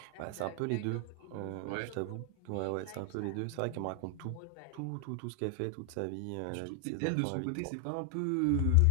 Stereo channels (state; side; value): different; both; correlation 0.00